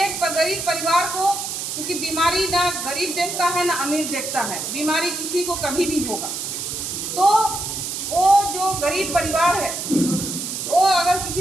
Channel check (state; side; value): noise; right; hiss, 4 dB below the sound